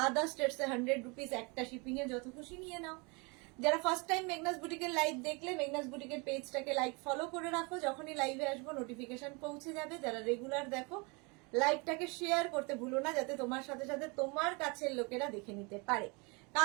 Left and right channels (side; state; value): left; quieter; 29.7 dB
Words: আদার স্টেটসে 100 রুপিস, একটা শিপিং এ যত খুশি নিয়ে নাও। যারা ফার্স্ট টাইম মেঘনাস বুটিকের লাইভ দেখলে, মেঘনাস বুটিকের পেজটাকে লাইক ফলো করে রাখো, যখনই লাইভে আসবো নোটিফিকেশন পৌঁছে যাবে। যারা রেগুলার দেখো, লাইভটাকে শেয়ার করতে ভুলো না, যাতে তোমার সাথে সাথে তোমার কাছের লোকেরা দেখে নিতে পারে।